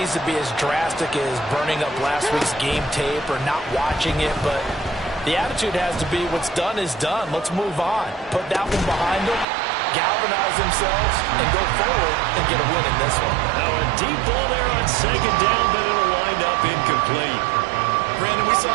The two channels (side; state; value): left; drops out; at 9.5 s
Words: to be as drastic as burning up last week's game tape or not watching it, but the attitude has to be what's done is done. Let's move on. Put that one behind them, galvanize themselves, and go forward and get a win in this one. Now a deep ball there on 2nd down, but it'll wind up incomplete. Brandon, we saw